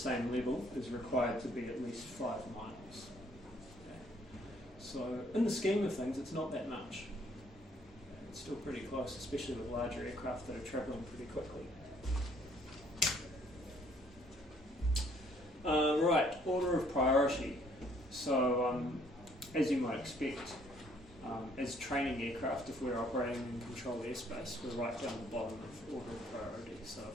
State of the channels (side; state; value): both; normal; correlation 0.63